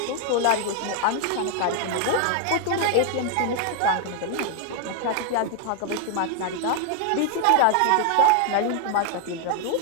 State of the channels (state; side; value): different; both; correlation 0.00